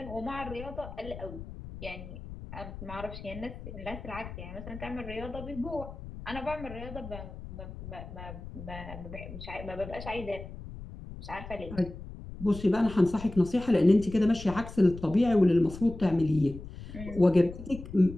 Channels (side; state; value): left; noise; rumble, 12 dB below the sound